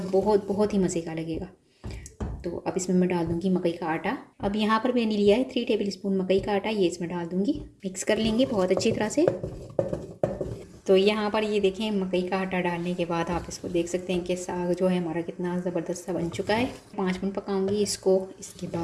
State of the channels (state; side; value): identical; both; correlation 1.00